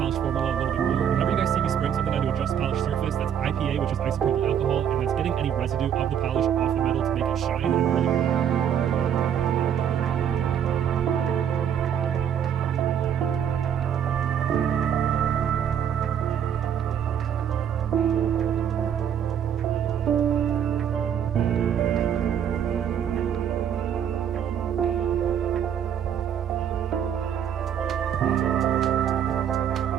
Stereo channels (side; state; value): left; quieter; 8.8 dB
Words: formula a little bit more. Whenever you guys see me spraying something onto a just polished surface, that's IPA, which is isopropyl alcohol, and that's getting any residue of the polish off the metal to make it shine and really